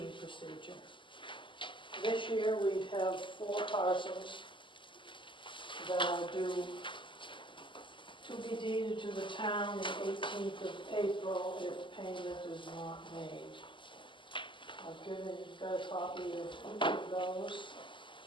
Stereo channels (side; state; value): right; late; 0.24 ms